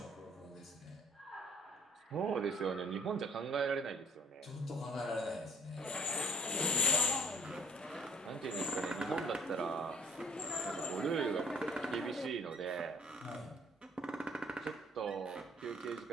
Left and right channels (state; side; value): normal; both; correlation 0.57